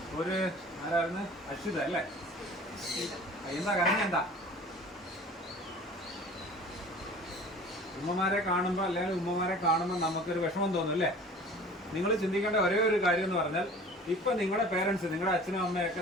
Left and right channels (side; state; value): both; normal; correlation 0.44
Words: ഒരു ആരായിരുന്നു? അശ്വിത അല്ലേ? എന്താ കരഞ്ഞ? എന്താ ഉമ്മമാരെ കാണുമ്പോൾ അല്ലെങ്കിൽ ഉമ്മമാരെ കാണുമ്പോൾ നമുക്കൊരു വിഷമം തോന്നും അല്ലേ? നിങ്ങൾ ചിന്തിക്കേണ്ട ഒരേ ഒരു കാര്യം എന്ന് പറഞ്ഞാൽ ഇപ്പം നിങ്ങളുടെ പേരൻസ്, നിങ്ങളുടെ അച്ഛനും അമ്മയൊക്കെ